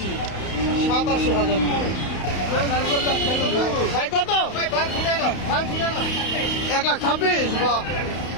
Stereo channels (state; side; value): late; right; 31 ms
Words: 87,000। ভাই কত? 1,26,000, বাহ।